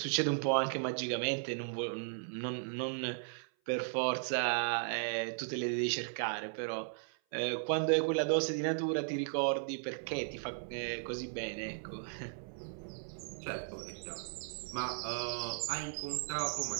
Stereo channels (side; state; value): left; silent; 54 dB below the other